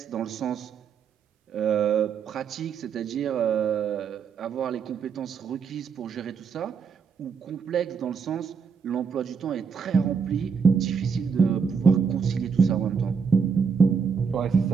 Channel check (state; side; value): quieter; left; 6.1 dB